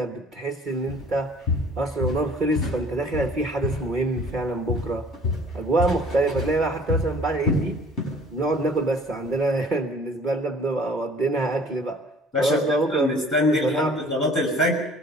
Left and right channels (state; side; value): normal; both; correlation 0.52